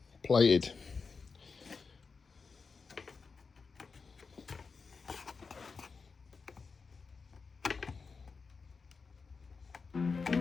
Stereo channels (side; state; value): right; quieter; 4.9 dB